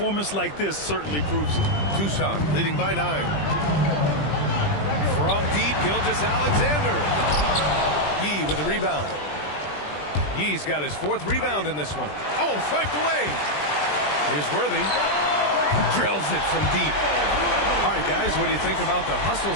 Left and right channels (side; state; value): right; late; 20 ms